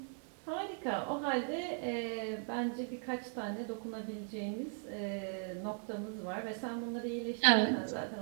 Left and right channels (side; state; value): left; silent; 52 dB below the other